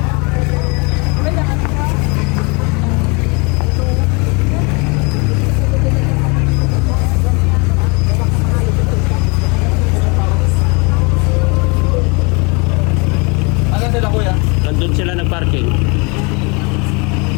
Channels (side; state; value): right; quieter; 30.3 dB